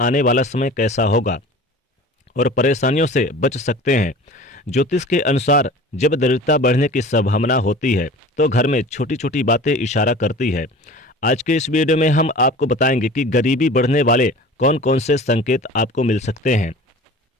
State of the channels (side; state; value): both; normal; correlation 0.40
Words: वाला समय कैसा होगा और परेशानियों से बच सकते हैं। ज्योतिष के अनुसार जब दरिद्रता बढ़ने की संभावना होती है तो घर में छोटी छोटी बातें इशारा करती है। आज के इस वीडियो में हम आपको बताएंगे कि गरीबी बढ़ने वाले कौन कौन से संकेत आपको मिल सकते हैं।